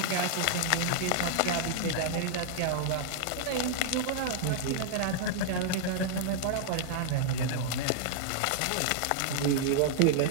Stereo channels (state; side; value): different; both; correlation -0.01